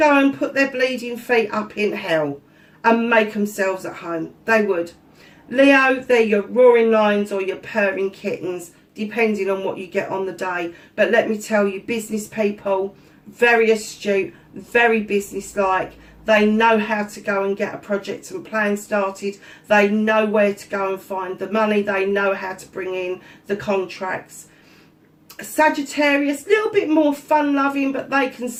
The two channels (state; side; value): identical; both; correlation 1.00